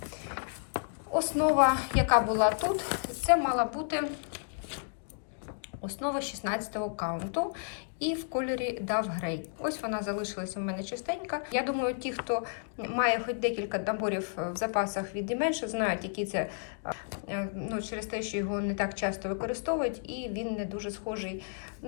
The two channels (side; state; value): right; silent; digital silence